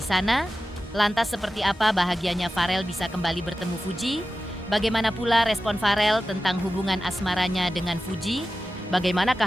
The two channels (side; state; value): both; normal; correlation 0.94